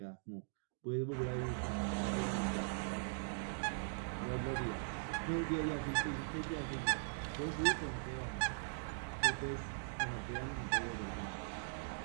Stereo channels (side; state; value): left; silent; digital silence